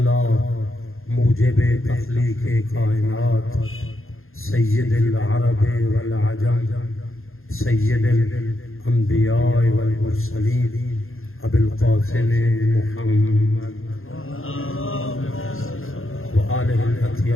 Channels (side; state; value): right; late; 0.60 ms